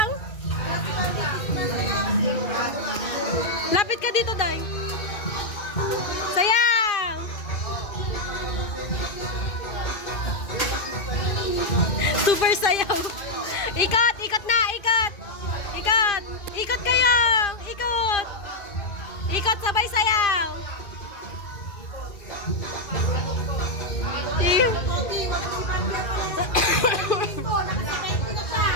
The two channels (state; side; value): late; right; 2.5 ms